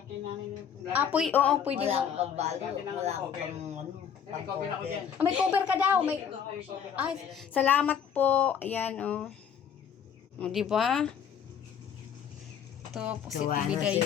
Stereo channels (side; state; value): right; quieter; 8.0 dB